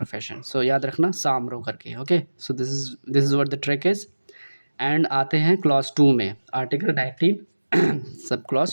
सो याद रखना सामरो करके, okay. So this is what the trick is. And आते हैं क्लॉज 2 में, आर्टिकल 19 सब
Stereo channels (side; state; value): both; inverted; correlation -1.00